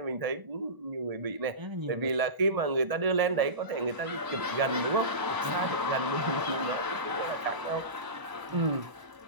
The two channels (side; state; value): left; late; 1.0 ms